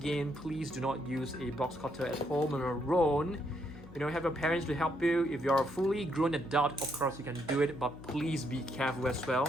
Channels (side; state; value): both; normal; correlation 0.75